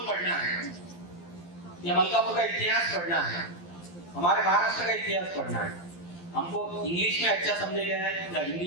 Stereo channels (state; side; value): late; right; 12 ms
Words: पढ़ना है या मलकापुर का इतिहास पढ़ना है, हमारे महाराष्ट्र का इतिहास पढ़ना है, हमको इंग्लिश में अच्छा समझेगा या